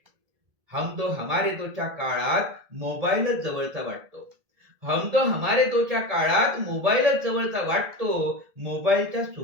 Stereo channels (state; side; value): late; left; 1.6 ms